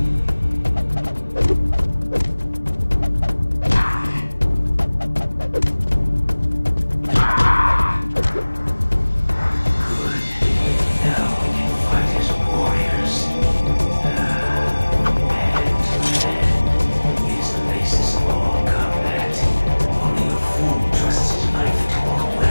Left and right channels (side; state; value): both; inverted; correlation -1.00